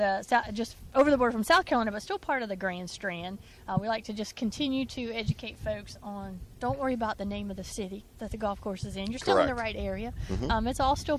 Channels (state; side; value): identical; both; correlation 1.00